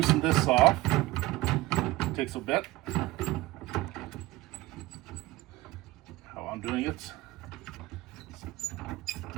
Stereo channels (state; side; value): quieter; left; 18.8 dB